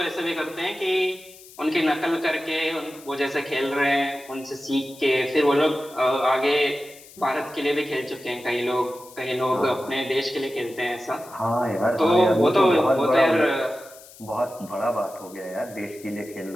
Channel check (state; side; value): noise; left; hiss, 21 dB below the sound